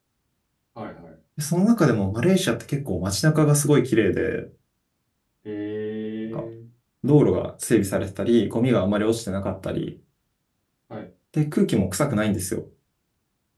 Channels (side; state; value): both; identical; correlation 1.00